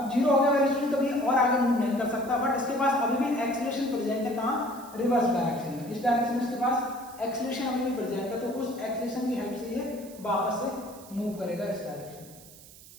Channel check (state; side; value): noise; right; hiss, 20 dB below the sound